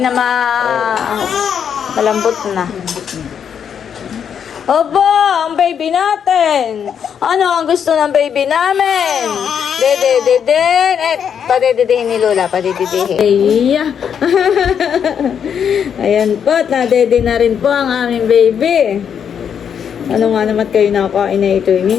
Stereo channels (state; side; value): quieter; right; 7.9 dB